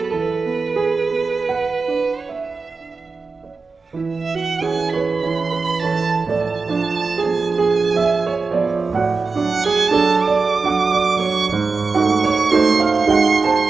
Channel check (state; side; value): quieter; left; 4.3 dB